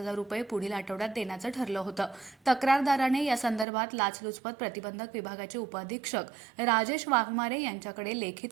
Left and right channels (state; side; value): drops out; left; at 3.7 s